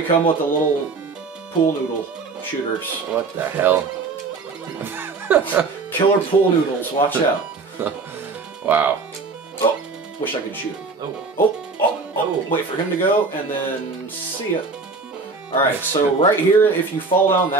come with the little pool noodle shooters. What the hell? Killer pool noodles, watch out. Wow. Oh, wish I could shoot him. Oh, wait for him to go, and then see ya. Alright, so right here, if you fall down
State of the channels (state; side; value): quieter; left; 4.1 dB